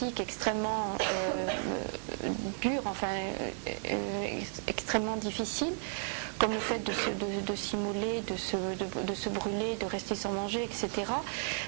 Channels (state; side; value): silent; left; 55 dB below the other